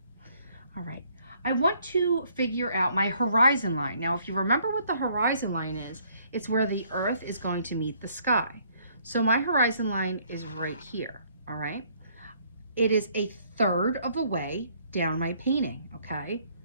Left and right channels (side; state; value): both; inverted; correlation -0.65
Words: all right, I want to figure out my horizon line. Now, if you remember what the horizon line is, it's where the earth is going to meet the sky. So my horizon line is right here, all right? It is a third of the way down my painting, okay?